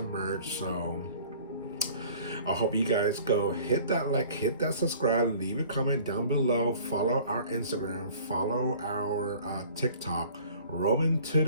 merch, so I hope you guys go hit that like, hit that subscribe, leave a comment down below, follow our Instagram, follow our TikTok, Roman to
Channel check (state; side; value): inverted; both; correlation -0.49